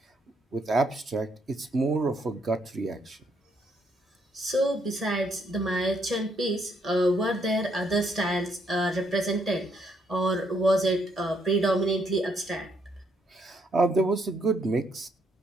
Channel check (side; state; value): both; normal; correlation 0.73